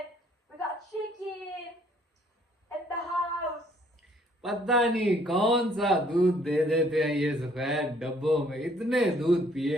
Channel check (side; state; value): both; normal; correlation 0.62